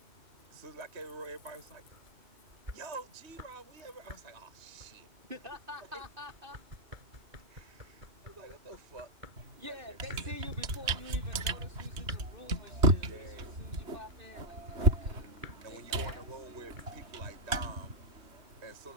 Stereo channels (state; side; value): late; left; 3.1 ms